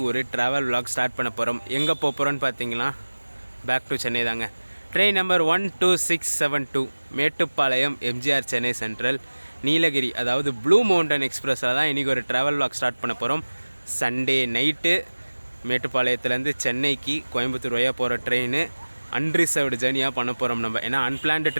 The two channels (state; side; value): inverted; both; correlation -1.00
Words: ஒரு ட்ராவல் விலாக் ஸ்டார்ட் பண்ண போகிறோம். எங்கே போக போகிறோன்னு பார்த்தீங்கன்னா, பேக் டு சென்னை தாங்க. Train number 12672 Mettupalayam MGR Chennai central Nilgiri, அதாவது ப்ளூ மவுண்டன் எக்ஸ்பிரஸில் தான் இன்றைக்கி ஒரு ட்ராவல் விலாக் ஸ்டார்ட் பண்ண போகிறோம். சண்டே நைட்டு மேட்டுப்பாளையத்துலேருந்து சென்னைக்கு கோயம்புத்தூர் வழியாக போகிற ட்ரெயின் அன்ரிசர்வ்டு ஜேர்னியாக பண்ண போகிறோம் நம்ம. ஏன்னா அன்பிளான்டு